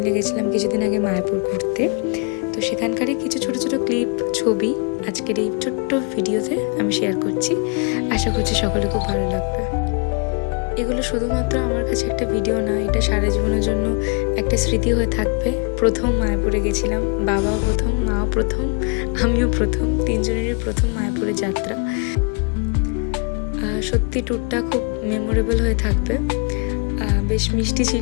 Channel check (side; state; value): right; quieter; 34.6 dB